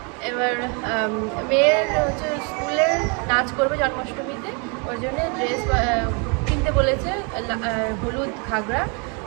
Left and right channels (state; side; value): quieter; left; 34.6 dB